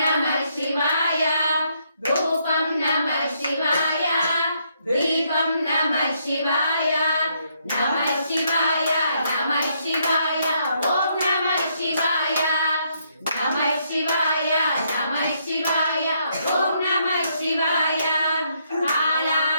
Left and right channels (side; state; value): both; inverted; correlation -0.73